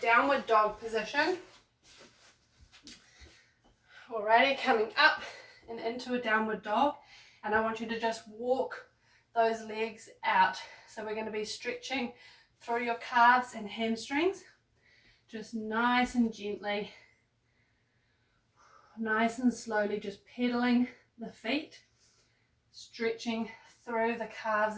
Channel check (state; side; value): identical; both; correlation 1.00